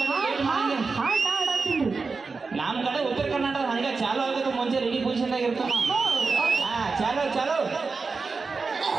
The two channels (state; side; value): quieter; left; 4.4 dB